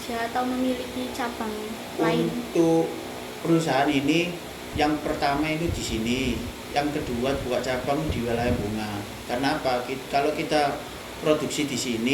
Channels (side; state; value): both; identical; correlation 1.00